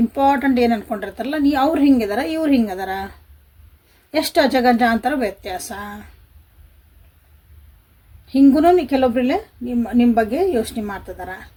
ಇಂಪಾರ್ಟೆಂಟ್ ಏನು ಅಂದ್ಕೊಂಡಿರ್ತಾರಲ್ಲ, ಅವ್ರು ಹಿಂಗಿದಾರ, ಇವ್ರು ಹಿಂಗದಾರ, ಎಷ್ಟು ಅಜಗಜಾಂತರ ವ್ಯತ್ಯಾಸ. ಹಿಂಗೂ ಕೆಲವೊಬ್ರಲ್ಲೇ ನಿಮ್ಮ ಬಗ್ಗೆ ಯೋಚನೆ ಮಾಡ್ತಿದಾರ.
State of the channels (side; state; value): both; identical; correlation 1.00